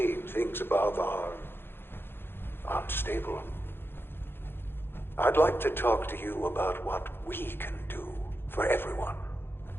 things above are unstable. I'd like to talk to you about what we can do for everyone.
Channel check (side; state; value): right; late; 0.10 ms